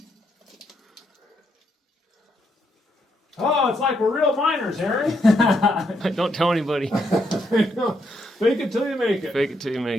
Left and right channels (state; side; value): normal; both; correlation 0.77